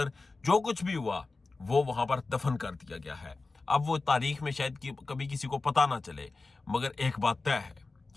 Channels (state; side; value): quieter; right; 3.6 dB